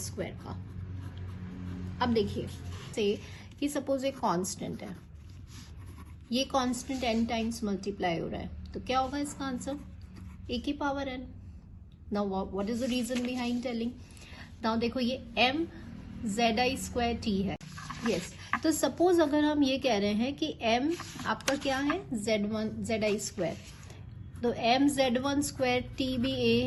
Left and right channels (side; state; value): both; identical; correlation 1.00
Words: का. अब देखिए से कि सपोज एक कांस्टेंट है, ये कांस्टेंट n टाइम्स मल्टीप्लाई हो रहा है, तो क्या होगा इसका आंसर, a की power n. Now what is the reason behind telling. Now देखो ये m zi स्क्वायर t है. यस, तो सपोज अगर हम ये कह रहे हैं कि m आपका क्या है, zi स्क्वायर, तो m z1 स्क्वायर t भी a